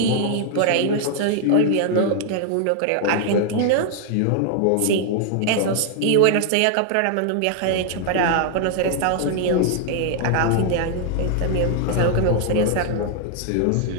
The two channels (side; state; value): both; different; correlation 0.00